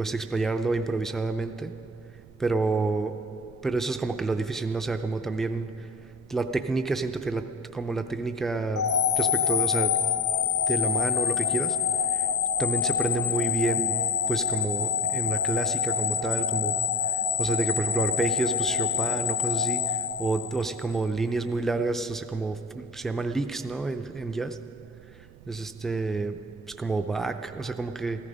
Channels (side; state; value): right; noise; rumble, 23 dB below the sound